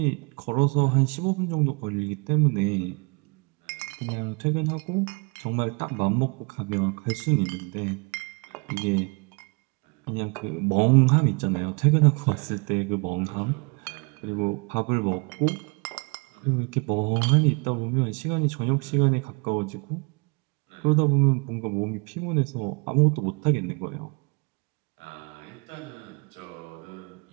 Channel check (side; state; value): left; quieter; 32.2 dB